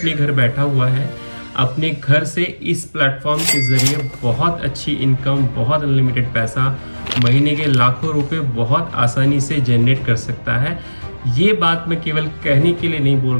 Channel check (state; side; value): inverted; both; correlation -1.00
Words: घर बैठा हुआ है अपने घर से इस प्लेटफॉर्म के ज़रिए बहुत अच्छी इनकम, बहुत अनलिमिटेड पैसा, महीने के लाखों रुपए बहुत आसानी से जनरेट कर सकता है। ये बात मैं केवल कहने के लिए नहीं बोल